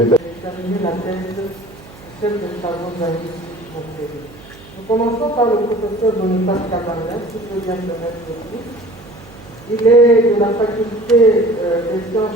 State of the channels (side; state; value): right; noise; hum, 21 dB below the sound